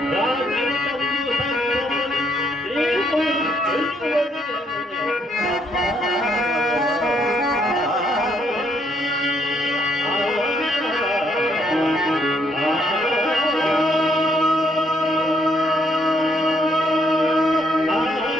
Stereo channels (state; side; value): normal; both; correlation 0.71